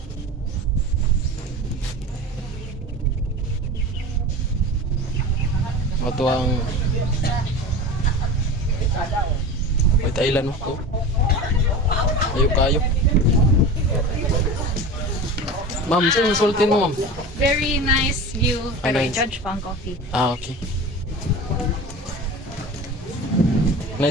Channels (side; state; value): both; normal; correlation 0.32